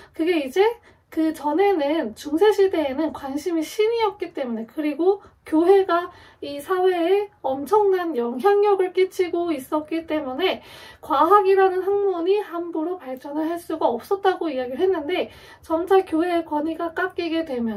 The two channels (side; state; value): both; identical; correlation 1.00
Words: 그게 이제 그 전에는 중세시대에는 관심이 신이었기 때문에, 그리고 교회가 이 사회에 엄청난 영향력을 끼치고 있었기 때문에 과학이라는 학문이 함부로 발전을 할 수가 없었다고 이야기를 했는데, 점차 교회의 권위가 깎이게